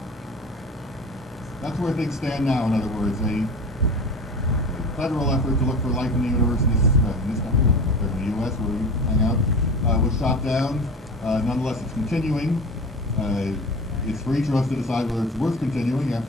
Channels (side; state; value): both; normal; correlation 0.33